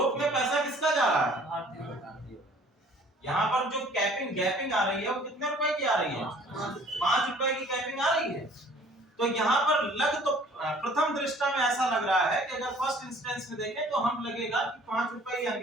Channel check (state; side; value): normal; both; correlation 0.54